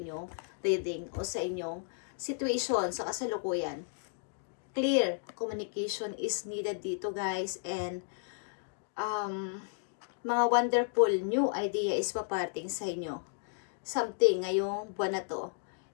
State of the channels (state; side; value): silent; right; digital silence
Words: reading o sa inyong situation sa kasalukuyan. Clear communication is needed dito, guys. And mga wonderful new idea is paparating sa inyo. Something ngayong buwan na to.